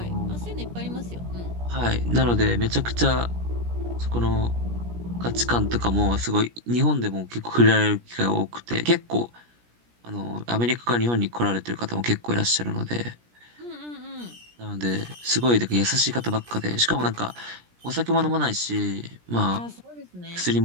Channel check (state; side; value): late; left; 17 ms